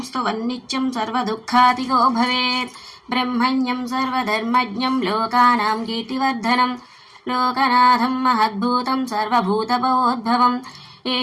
स्तुवन्नित्यं सर्वदुःखातिगो भवेत् ब्रह्मण्यं सर्वधर्मज्ञं लोकानां कीर्तिवर्धनं लोकनाथं महद्भूतं सर्वभूतभवोद्भवम्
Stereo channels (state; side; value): identical; both; correlation 1.00